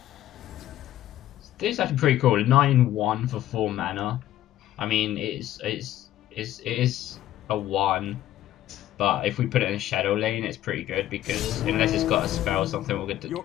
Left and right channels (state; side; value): quieter; right; 13.4 dB